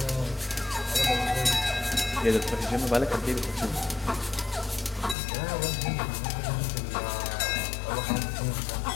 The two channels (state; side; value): drops out; right; at 5.2 s